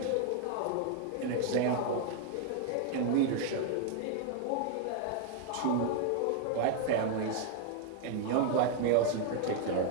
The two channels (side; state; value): both; different; correlation 0.00